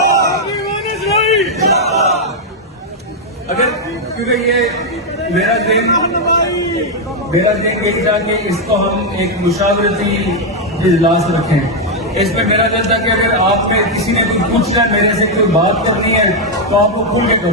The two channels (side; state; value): both; normal; correlation 0.00